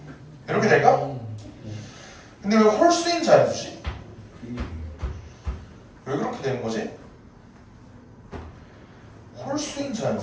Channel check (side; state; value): both; identical; correlation 1.00